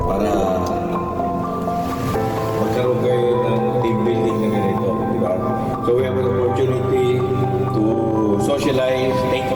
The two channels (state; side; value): identical; both; correlation 1.00